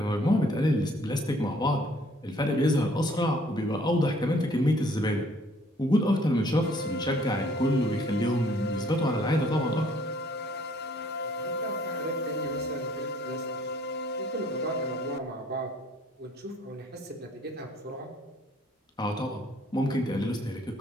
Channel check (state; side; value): normal; both; correlation 0.60